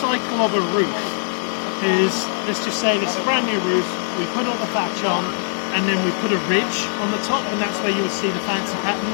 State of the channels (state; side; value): silent; right; digital silence